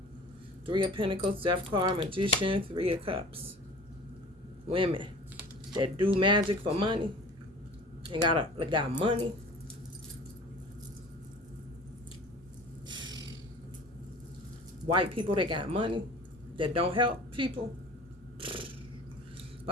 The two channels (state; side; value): normal; both; correlation 0.43